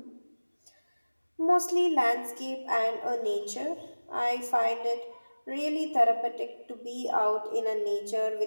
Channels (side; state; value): both; inverted; correlation -1.00